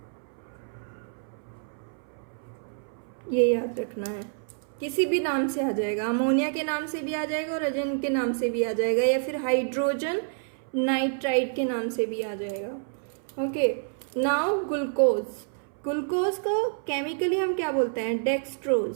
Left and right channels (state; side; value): silent; left; 59 dB below the other